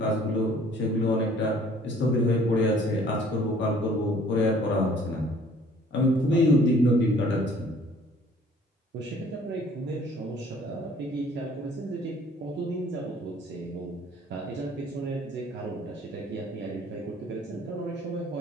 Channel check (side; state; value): both; normal; correlation 0.55